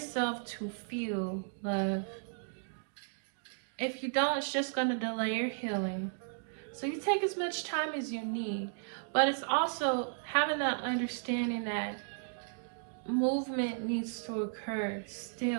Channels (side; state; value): left; silent; digital silence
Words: to feel love. If you don't, it's just going to delay your healing. So you take as much time as you need. But it's also having that understanding that movement needs to occur